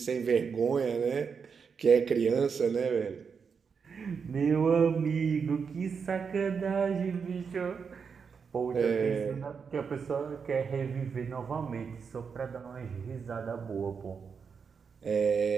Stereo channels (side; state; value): left; quieter; 6.0 dB